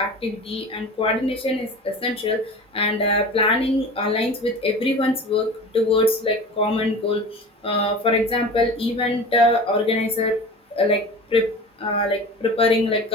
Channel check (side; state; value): both; normal; correlation 0.35